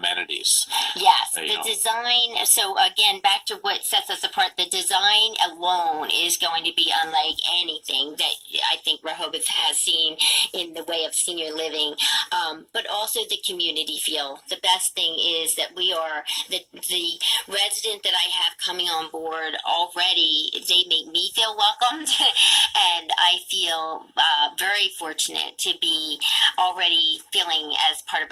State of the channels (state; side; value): identical; both; correlation 1.00